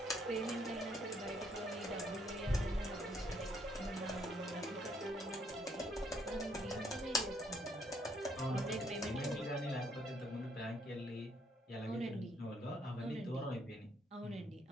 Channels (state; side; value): normal; both; correlation 0.69